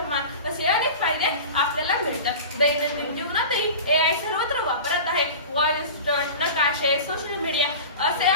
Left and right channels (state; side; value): inverted; both; correlation -0.34